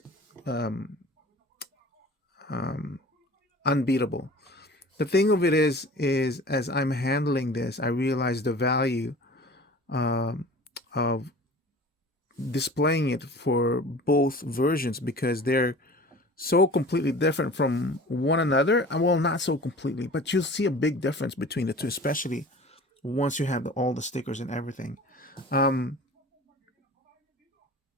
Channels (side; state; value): both; normal; correlation 0.41